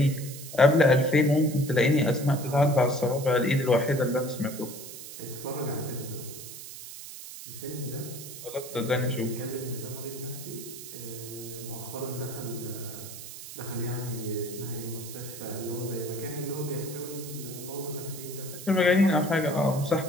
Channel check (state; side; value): noise; right; hiss, 12 dB below the sound